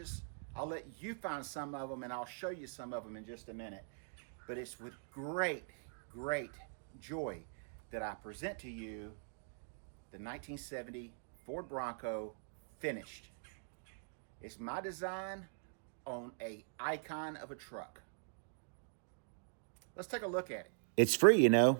I'll let you find some of them, and I'll show you some of them in just a minute. But it's with great joy that I present to you the 1970 Ford Bronco finished. It's my design on an icon of a truck. Let's take a look at it. It's free, you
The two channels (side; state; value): left; silent; digital silence